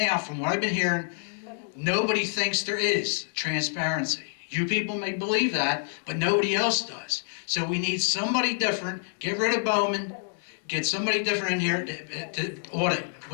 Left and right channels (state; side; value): silent; right; digital silence